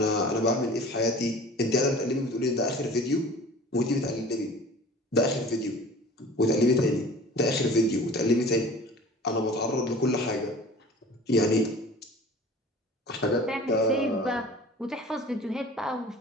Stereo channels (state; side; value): normal; both; correlation 0.43